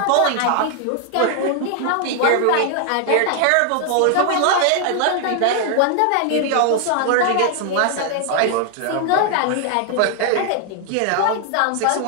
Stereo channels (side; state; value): both; different; correlation 0.00